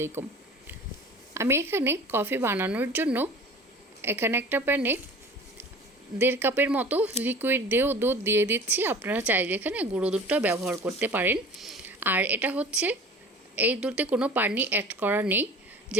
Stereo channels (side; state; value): both; normal; correlation 0.42